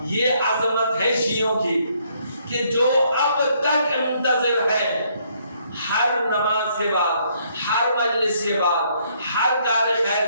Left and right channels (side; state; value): both; inverted; correlation -0.69